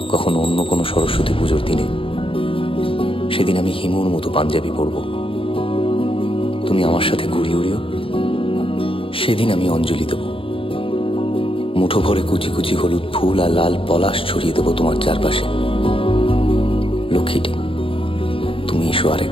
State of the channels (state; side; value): late; right; 0.26 ms